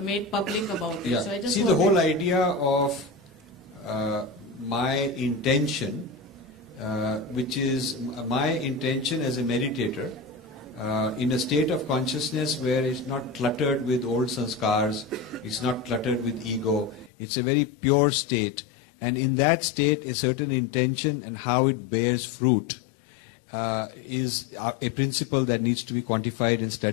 made public about it. Yeah. So I just see, the whole idea of my intention, which is my intention as a meditator, in a state of consciousness where it's not cluttered with old sanskars, it's not cluttered with ego, it's a very pure state. And in that state, a certain intention and how it bears fruit is a principle that needs to be quantified and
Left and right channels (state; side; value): drops out; right; at 17.1 s